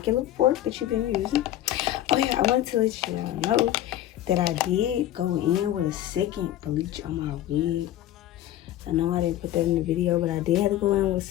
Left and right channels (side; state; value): right; quieter; 13.1 dB